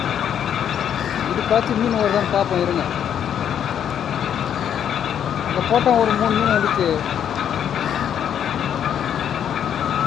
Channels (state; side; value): quieter; right; 9.2 dB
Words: இதுக்காச்சும் மீன் வருதான்னு பார்ப்போம் இருங்க. அங்கே போட்டோம் ஒரு 3 மீன் வந்துச்சு.